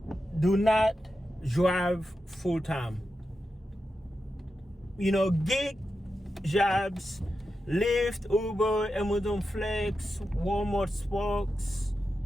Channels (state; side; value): normal; both; correlation 0.90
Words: Do not drive full time. You know, gig jobs, Lyft, Uber, Amazon Flex, Walmart Sparks,